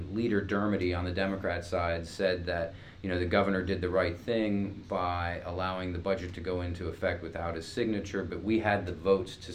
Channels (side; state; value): both; identical; correlation 1.00